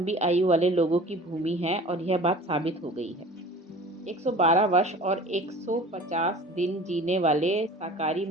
आयु वाले लोगों की भूमि है और यह बात साबित हो गई है। 112 वर्ष और 150 दिन जीने वाले साकारी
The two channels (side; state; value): both; normal; correlation 0.42